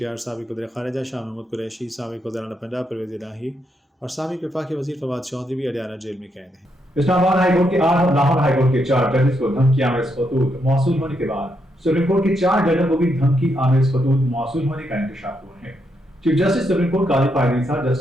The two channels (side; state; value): both; normal; correlation 0.79